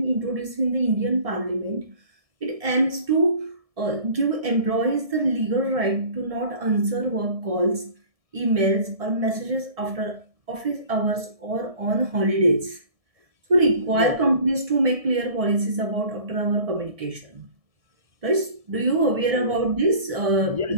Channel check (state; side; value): late; left; 1.7 ms